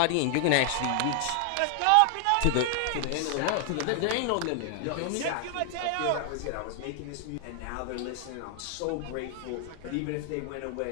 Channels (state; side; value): different; both; correlation 0.00